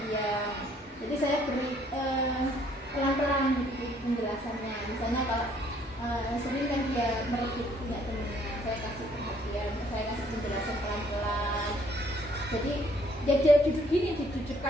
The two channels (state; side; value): normal; both; correlation 0.64